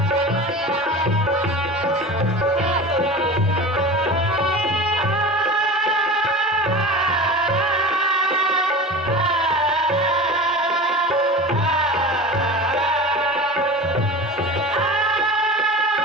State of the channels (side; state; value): both; normal; correlation 0.33